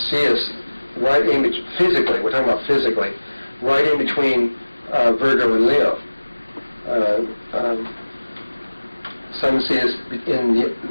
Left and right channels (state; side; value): inverted; both; correlation -1.00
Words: see us right in physically. We're talking about physically, right in between Virgo and Leo. Some see us in